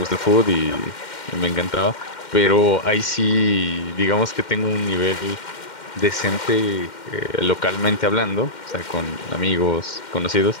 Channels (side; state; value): right; late; 2.1 ms